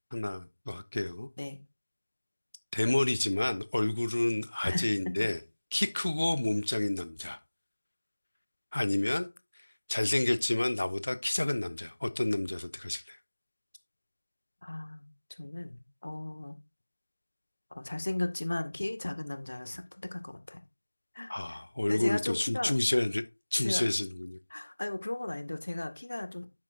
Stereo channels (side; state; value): both; inverted; correlation -1.00